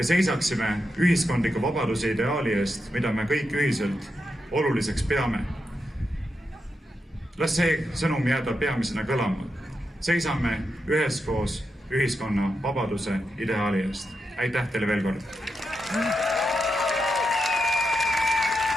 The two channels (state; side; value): normal; both; correlation 0.86